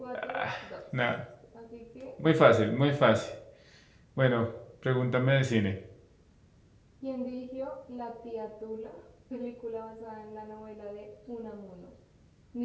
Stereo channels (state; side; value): identical; both; correlation 1.00